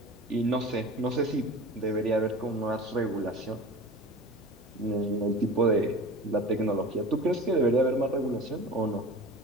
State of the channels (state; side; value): normal; both; correlation 0.37